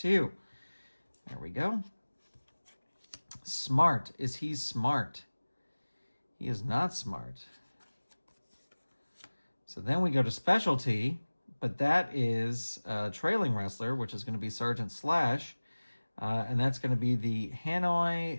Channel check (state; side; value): inverted; both; correlation -1.00